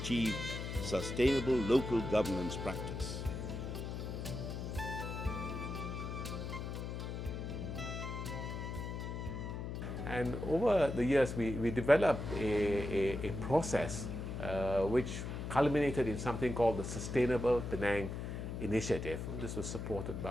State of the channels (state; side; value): noise; left; hum, 5 dB below the sound